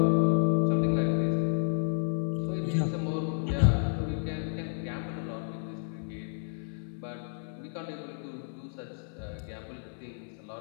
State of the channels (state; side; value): silent; right; 57 dB below the other